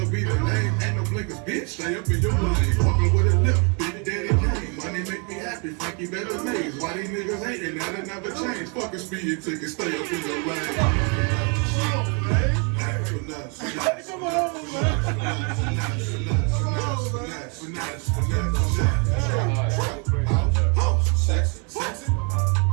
be the name, ain't no blinkers, bitch. Stay up in your lane, walking with a lip, big daddy game. Money make me happy, Frankie better maze. Why these niggas hating, that'll never change. Fuck a speeding ticket, stay up in your lane. Come on,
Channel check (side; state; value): left; quieter; 35.8 dB